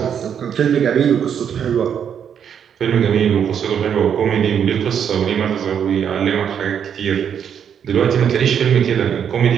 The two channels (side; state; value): left; quieter; 8.2 dB